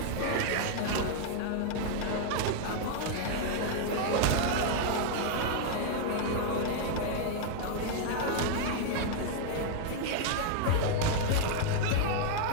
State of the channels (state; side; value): different; both; correlation 0.00